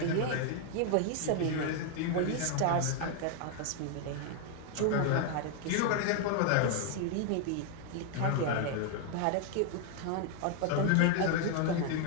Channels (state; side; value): different; both; correlation 0.00